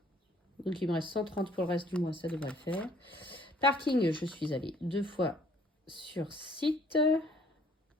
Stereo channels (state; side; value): normal; both; correlation 0.60